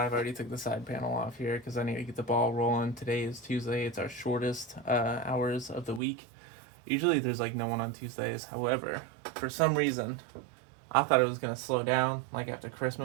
already took the side panel off here because I need to get the ball rolling. Today is Tuesday. It's our shortest hours of the week. Usually there's like no one on Tuesdays. However, for some reason, I thought it was going to slow down like after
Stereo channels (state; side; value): drops out; left; at 6.0 s